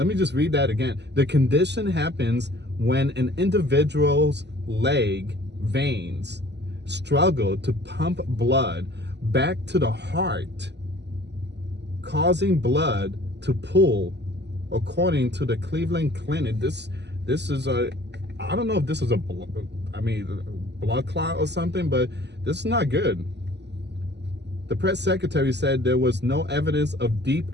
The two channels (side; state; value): left; late; 0.50 ms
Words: me just read that again. The condition happens when an individual's leg veins struggle to pump blood back to the heart, causing blood to pool, according to the Cleveland Clinic. This is I don't know if this is a blood clot or something, but this is not good. The press secretary said there was no evidence of